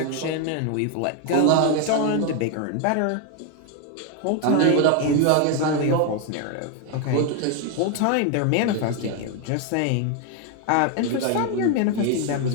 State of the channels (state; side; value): different; both; correlation 0.01